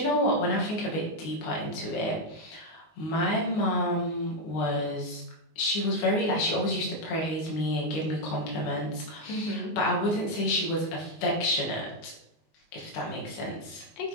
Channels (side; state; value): right; late; 19 ms